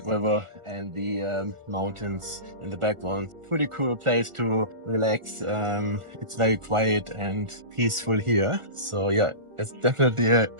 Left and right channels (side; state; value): left; late; 1.4 ms